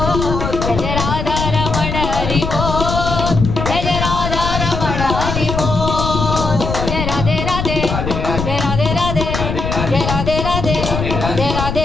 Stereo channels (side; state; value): left; noise; rumble, 3 dB below the sound